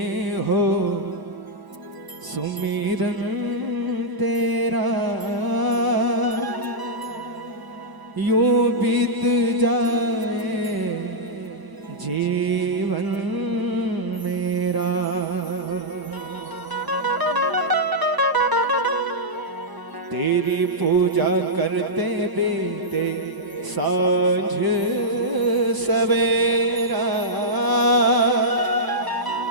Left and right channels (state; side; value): late; left; 1.0 ms